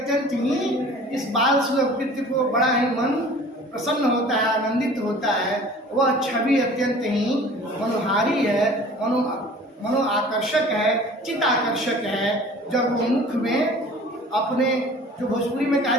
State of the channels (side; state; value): both; normal; correlation 0.46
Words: ही इस बाल सुलभ कृत्य को बड़ा ही मन प्रसन्न होता है, आनंदित होता है। वह छवि अत्यंत ही मनोहारी है, मनो आकर्षक है, चित्त आकर्षक है। जब वो मुख में अपने, जो भोजपुरी में कहा